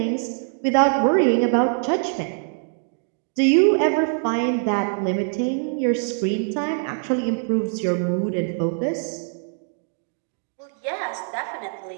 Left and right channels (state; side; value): silent; left; 63 dB below the other